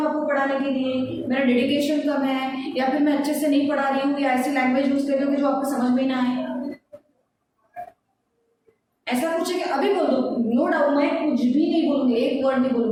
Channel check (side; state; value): both; identical; correlation 1.00